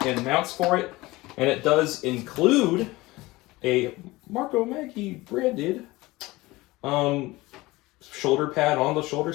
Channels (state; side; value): quieter; right; 20.3 dB